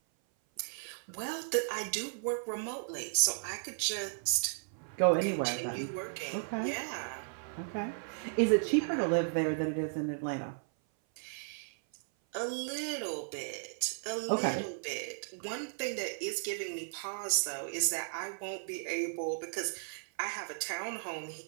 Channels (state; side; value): silent; left; 54 dB below the other